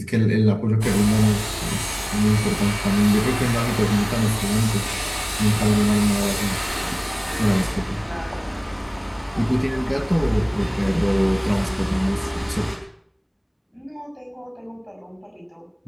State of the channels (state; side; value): identical; both; correlation 1.00